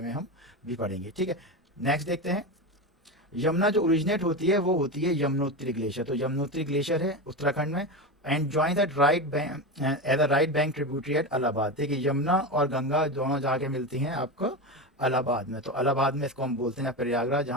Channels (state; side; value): normal; both; correlation 0.20